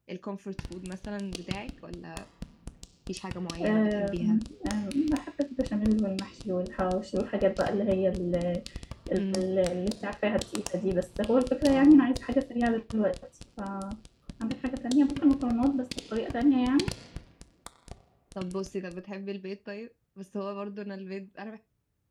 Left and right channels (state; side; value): identical; both; correlation 1.00